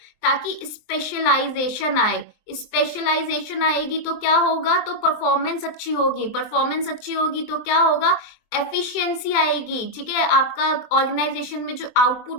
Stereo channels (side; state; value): right; late; 23 ms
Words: ताकि स्पेशलाइजेशन आए। स्पेशलाइजेशन आएगी तो क्या होगा, तो परफॉर्मेंस अच्छी होगी, परफॉर्मेंस अच्छी होगी तो क्या होगा, एफिशिएंसी आएगी, ठीक है, आपका ऑर्गेनाइजेशन में जो